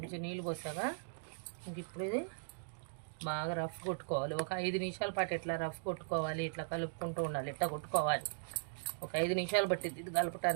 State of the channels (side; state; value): left; silent; digital silence